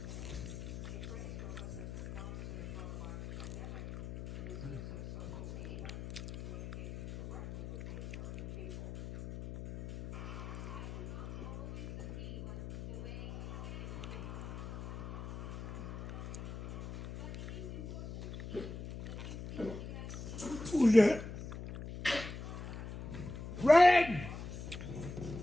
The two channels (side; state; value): left; noise; hum, 8 dB below the sound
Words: Who's that? Red!